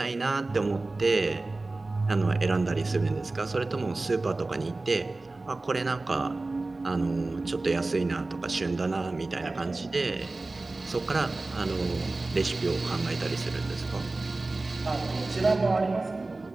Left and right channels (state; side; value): quieter; left; 3.2 dB